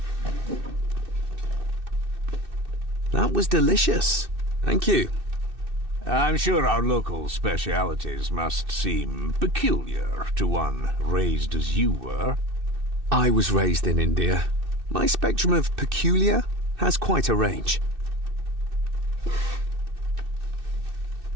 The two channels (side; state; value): left; late; 2.6 ms